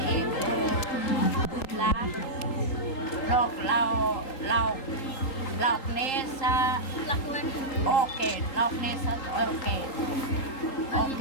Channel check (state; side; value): late; right; 3.8 ms